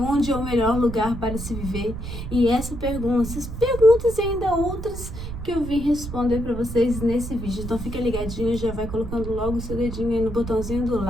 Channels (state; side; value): noise; right; rumble, 8 dB below the sound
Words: é o melhor lugar para se viver. E essas perguntas e ainda outras que eu vim responder para vocês nesse vídeo. Então fica ligadinho, já vai colocando logo o seu dedinho aí no botãozinho do